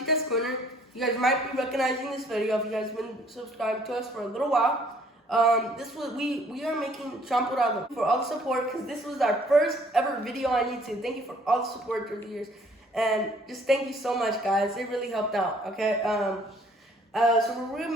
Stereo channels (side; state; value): both; normal; correlation 0.60